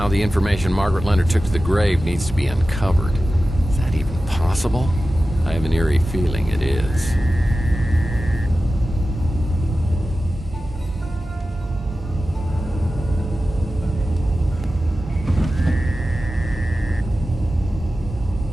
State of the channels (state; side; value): normal; both; correlation 0.94